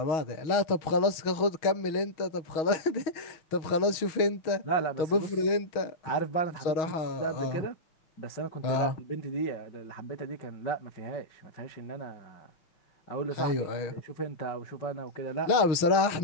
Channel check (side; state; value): right; late; 6.3 ms